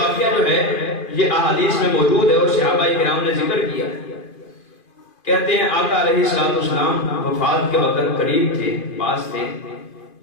جو ہے یہ احادیث میں موجود ہے، اور صحابہ کرام نے ذکر کیا۔ کہتے ہیں آقا علیہ السلام وفات کے وقت قریب تھے، پاس تھے،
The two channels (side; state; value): right; late; 2.5 ms